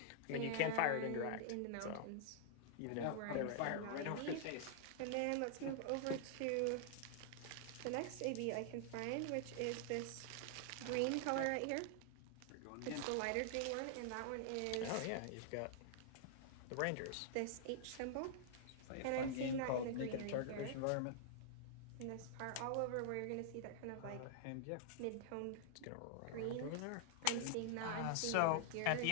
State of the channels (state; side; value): different; both; correlation -0.01